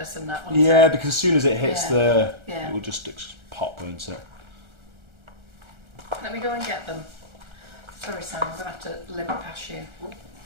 in that one. Yeah, because as soon as it hits Yeah. it will just pop, won't it? Let me go and get them. Sorry, Sam, I'm going to have to limp past you.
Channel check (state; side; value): late; left; 1.4 ms